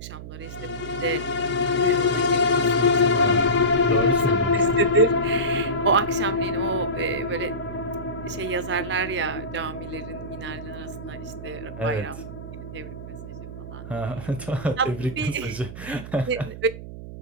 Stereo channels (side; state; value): right; noise; hum, 11 dB below the sound